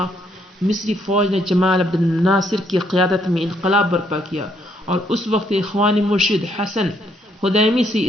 مصری فوج نے جمال عبد الناصر کی قیادت میں انقلاب برپا کیا اور اس وقت اخوانی مرشد حسن خدیمی سے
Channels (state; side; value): normal; both; correlation 0.71